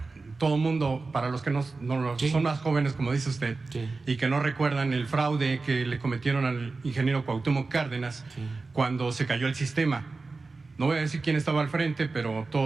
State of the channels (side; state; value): left; quieter; 3.8 dB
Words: todo el mundo, para los que no sí. son más jóvenes, como dice usted, sí. y que no recuerdan el fraude que le cometieron al ingeniero Cuauhtémoc Cárdenas sí. cuando se cayó el sistema. No voy a decir quién estaba al frente, pero